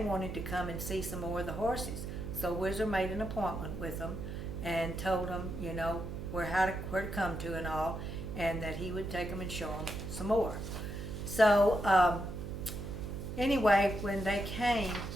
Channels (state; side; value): noise; right; hum, 7 dB below the sound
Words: to come and see some more of the horses. So Whizzer made an appointment with them and told them, you know, where to come to and all, and that he would take them and show them some more. So anyway, when they came,